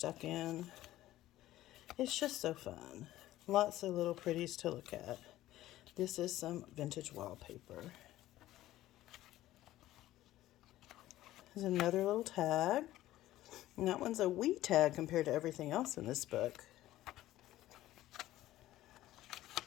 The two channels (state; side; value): quieter; right; 15.0 dB